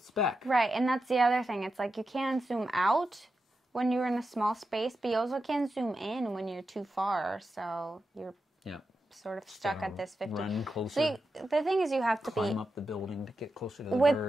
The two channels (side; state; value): both; normal; correlation 0.89